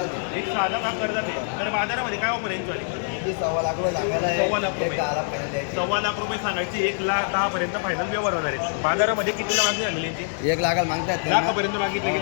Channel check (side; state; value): right; silent; 62 dB below the other